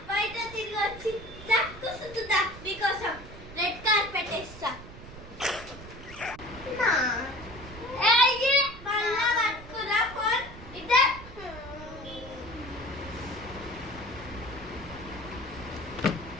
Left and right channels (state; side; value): noise; right; rumble, 15 dB below the sound